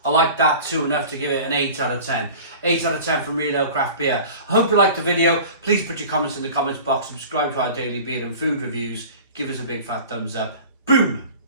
I like that too, enough to give it an 8 out of 10. 8 out of 10 from Real Ale Craft Beer. I hope you liked the video. Please put your comments in the comments box. Subscribe to our daily beer and food reviews. Give us a big fat thumbs up. Boom!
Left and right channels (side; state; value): both; inverted; correlation -0.40